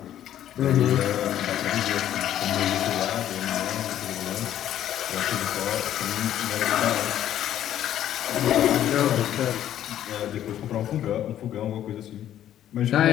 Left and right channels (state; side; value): quieter; right; 11.5 dB